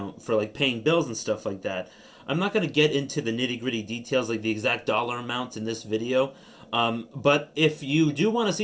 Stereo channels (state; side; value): identical; both; correlation 1.00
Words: for paying bills and stuff like that. I'm not going to get into the nitty-gritty details, the exact dollar amounts in this video. But if you do want to